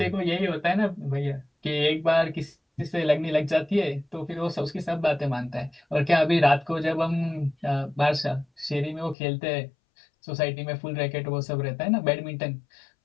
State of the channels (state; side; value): drops out; right; at 9.2 s